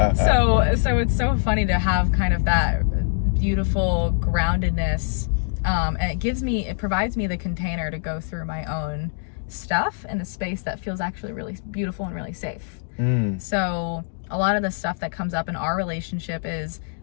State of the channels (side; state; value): right; silent; digital silence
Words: so it's so funny to have kind of that beautiful groundedness, and it provides me the container to go through my own stuff in a space that feels actually really beautiful and really safe. So a lot of the stuff that comes up in our relationship is